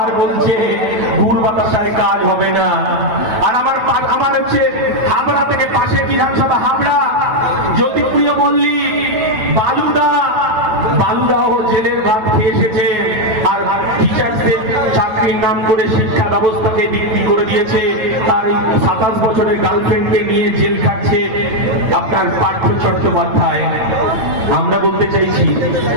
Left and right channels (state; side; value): late; left; 9.1 ms